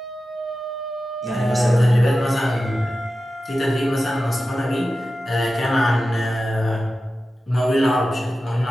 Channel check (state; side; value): normal; both; correlation 0.93